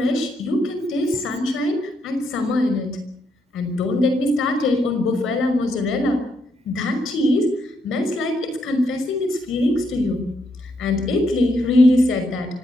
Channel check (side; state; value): both; normal; correlation 0.77